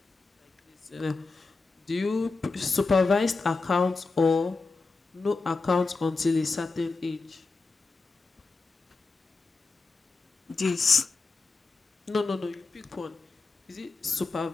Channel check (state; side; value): quieter; right; 3.9 dB